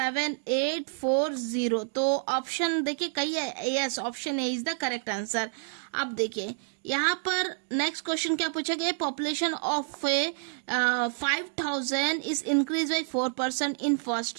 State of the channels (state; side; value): silent; left; digital silence